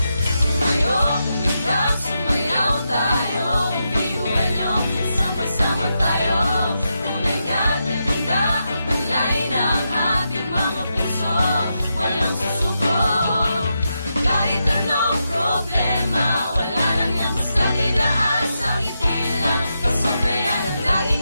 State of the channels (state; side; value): inverted; both; correlation -0.85